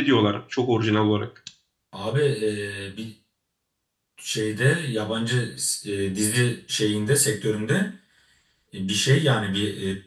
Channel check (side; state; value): both; identical; correlation 1.00